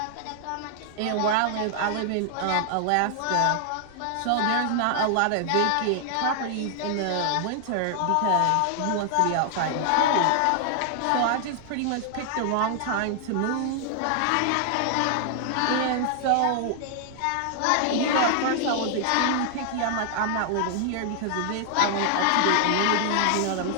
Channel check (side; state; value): both; different; correlation 0.00